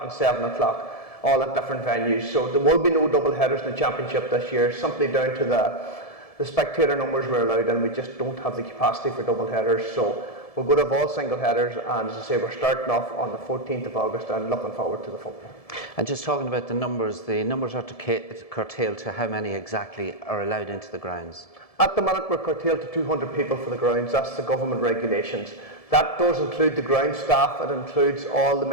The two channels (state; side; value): late; right; 1.7 ms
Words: and 7 o'clock, all at different venues. So there will be no double headers in the championship this year, simply down to the spectator numbers we're allowed, and we just don't have the capacity for double headers. So we're going to have all single headers, and as I say, we're starting off on the 14th of August and looking forward to the football. And just talking about the numbers are curtailed to how many exactly are allowed into the grounds? At the minute, we're curtailed to 200 people for the grounds. That's the government regulations. That does include the ground staff. It includes all the